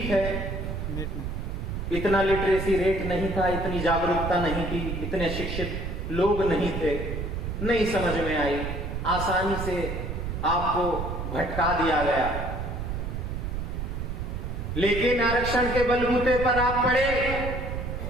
है, इतना लिटरेसी रेट नहीं था, इतनी जागरूकता नहीं थी, इतने शिक्षित लोग नहीं थे, नहीं समझ में आई, आसानी से आपको भटका दिया गया। लेकिन आरक्षण के बलबूते पर आप पढ़े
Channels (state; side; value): noise; right; rumble, 4 dB below the sound